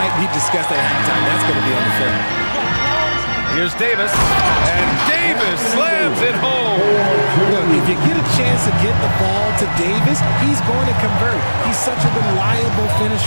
be discussed at halftime. That's going to be on the film. Here's Davis. And Davis slams it home. Look, if you get a chance to get the ball to Davis, he's going to convert. He's such a reliable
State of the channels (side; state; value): both; inverted; correlation -1.00